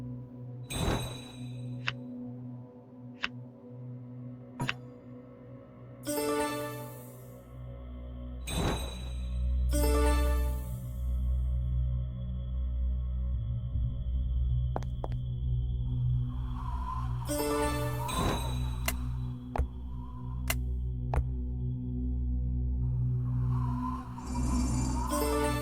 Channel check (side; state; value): both; identical; correlation 1.00